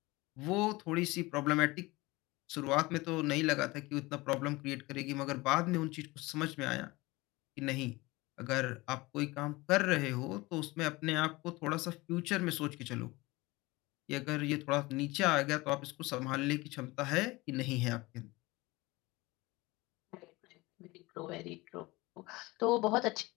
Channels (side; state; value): right; quieter; 21.8 dB